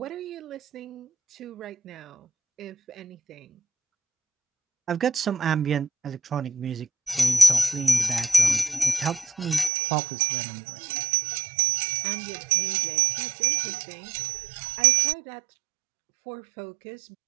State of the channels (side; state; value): left; drops out; at 9.7 s